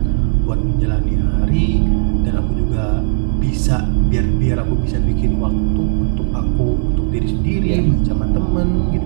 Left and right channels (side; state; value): left; silent; digital silence